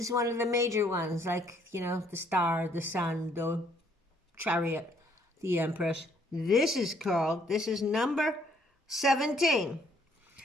is one of the major ones, like, the star, the sun, the chariot, the empress. This is number 17.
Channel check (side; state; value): both; normal; correlation 0.66